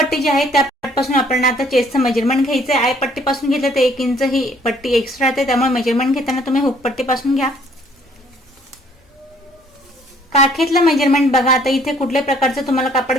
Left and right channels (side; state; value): both; normal; correlation 0.61